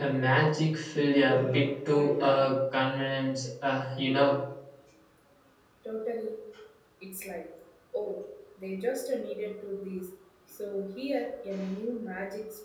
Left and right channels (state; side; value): identical; both; correlation 1.00